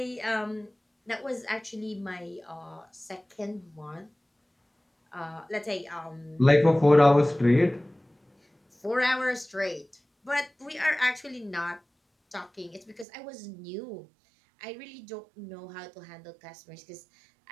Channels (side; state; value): left; drops out; at 13.1 s